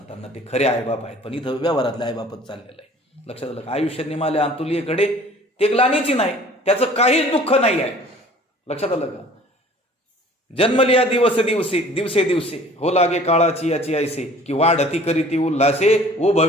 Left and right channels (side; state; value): both; normal; correlation 0.50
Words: ते खरे आईबाप आहेत, पण इथं व्यवहारातले आईबापच चाललेलं आहे. लक्षात आलं का? आयुष्य निमाले अंतुलीकडे ते ग्लानीची नाही, त्याचं काहीच दुःख नाही आहे. लक्षात आलं का? जन्मलिया दिवस दिवसे दिवसे दिवसे हो लागे काळाची याची ऐसे की वाढती करीती उल्हासे ओ